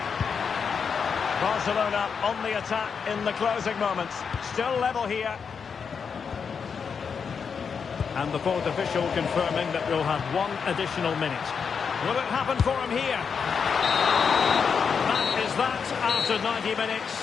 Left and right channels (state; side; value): quieter; right; 6.2 dB